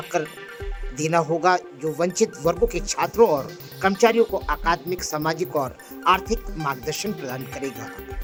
देना होगा, जो वंचित वर्गों के छात्रों और कर्मचारियों को अकादमिक, सामाजिक और आर्थिक मार्गदर्शन प्रदान करेगा।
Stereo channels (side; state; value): both; identical; correlation 1.00